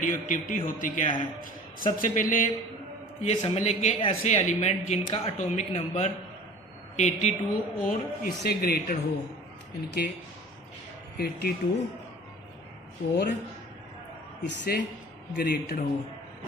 एक्टिविटी होती क्या है। सबसे पहले ये समझ लें कि ऐसे एलिमेंट जिनका एटॉमिक नंबर 82 और इससे ग्रेटर हो, इनके 82 और इससे ग्रेटर हो,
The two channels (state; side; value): normal; both; correlation 0.43